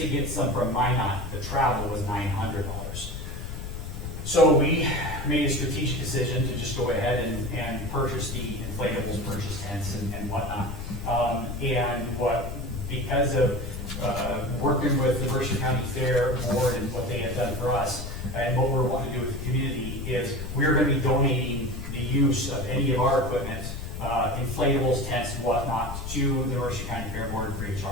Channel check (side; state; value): left; noise; rumble, 7 dB below the sound